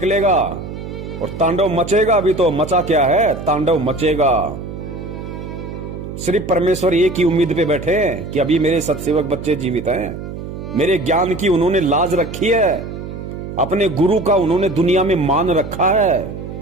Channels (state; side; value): noise; right; hum, 9 dB below the sound